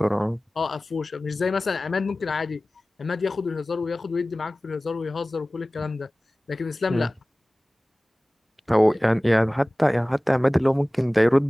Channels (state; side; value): normal; both; correlation 0.98